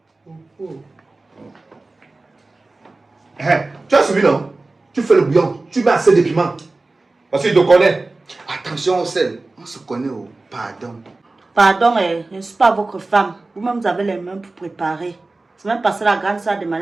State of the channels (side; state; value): left; quieter; 3.2 dB